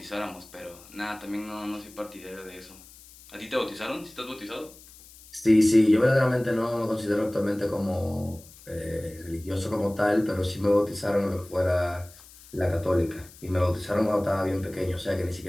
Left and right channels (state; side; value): noise; left; hiss, 22 dB below the sound